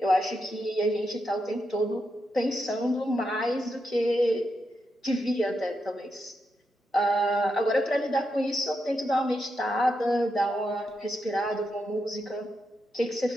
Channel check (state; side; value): normal; both; correlation 0.84